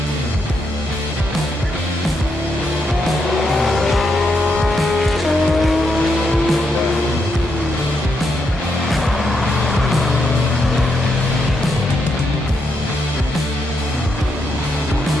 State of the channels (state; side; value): normal; both; correlation 0.81